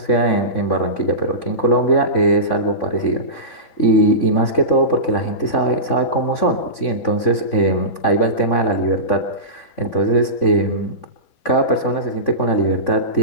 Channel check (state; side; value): late; right; 3.5 ms